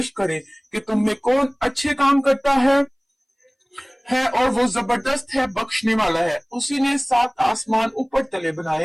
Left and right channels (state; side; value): identical; both; correlation 1.00